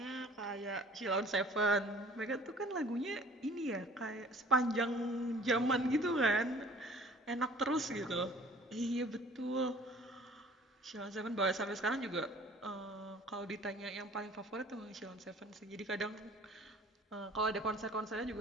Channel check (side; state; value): both; normal; correlation 0.50